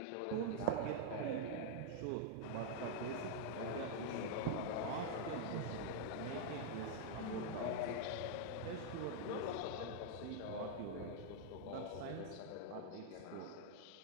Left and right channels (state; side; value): different; both; correlation -0.01